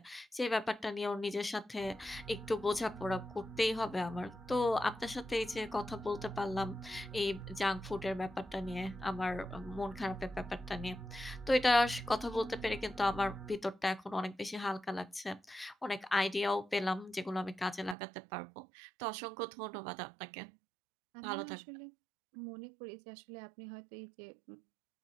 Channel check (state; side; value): drops out; left; at 17.9 s